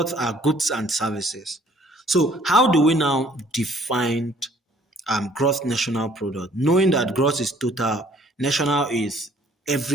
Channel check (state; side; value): normal; both; correlation 0.59